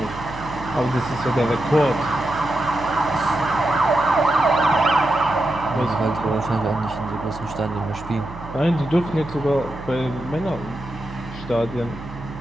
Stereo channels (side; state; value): right; noise; hum, 14 dB below the sound